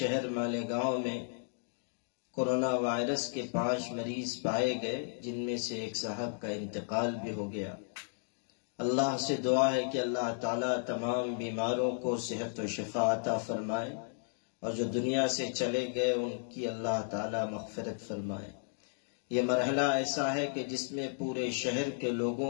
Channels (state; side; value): silent; right; digital silence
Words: مالیگاؤں میں کورونا وائرس کے 5 مریض پائے گئے، جن میں سے ایک صاحب کا انتقال بھی ہو گیا۔ اللہ سے دعا ہے کہ اللہ تعالیٰ تمام بیماروں کو صحت و شفا عطا فرمائے، اور جو دنیا سے چلے گئے ان کی اللہ تعالیٰ مغفرت فرمائے۔ یہ مرحلہ ایسا ہے کہ جس میں پورے شہر کے